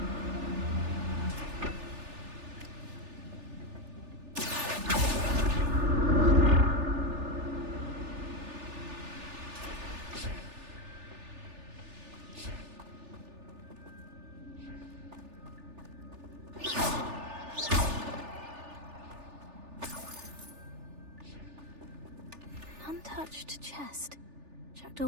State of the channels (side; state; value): left; late; 3.4 ms